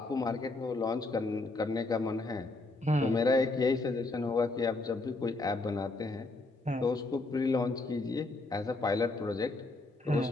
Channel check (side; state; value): right; quieter; 3.1 dB